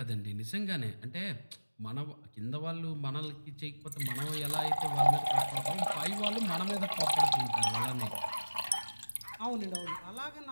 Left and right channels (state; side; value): inverted; both; correlation -1.00